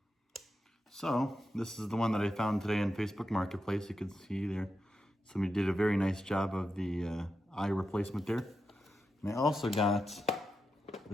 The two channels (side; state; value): both; normal; correlation 0.88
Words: So, this is the one that I found today in Facebook Marketplace. You can see there, somebody did a very nice job of the eye replacement there. And I also got